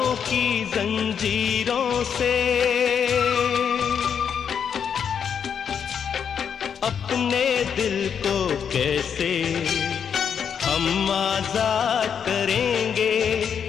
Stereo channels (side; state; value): right; quieter; 7.5 dB